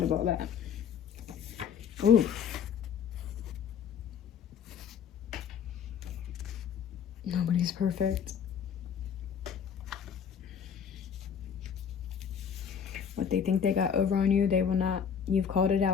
of all that. Oof. Nobody's perfect. What they think they got over on you, they will not. You've called it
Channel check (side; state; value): right; quieter; 7.4 dB